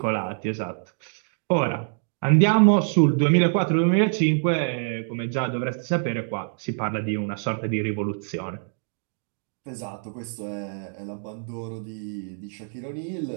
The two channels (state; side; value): silent; left; digital silence